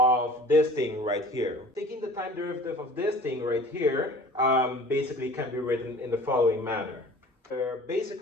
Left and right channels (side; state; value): both; normal; correlation 0.45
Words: this thing right here. Taking the time derivative of this thing right here basically can be written in the following manner.